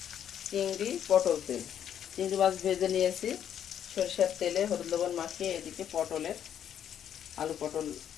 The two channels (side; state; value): right; quieter; 9.5 dB